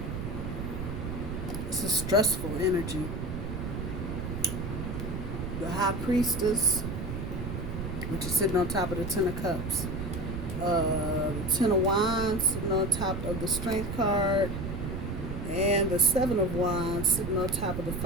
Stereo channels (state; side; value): noise; right; rumble, 5 dB below the sound